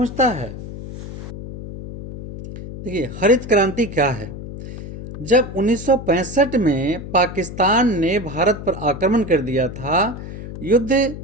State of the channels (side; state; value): left; noise; hum, 10 dB below the sound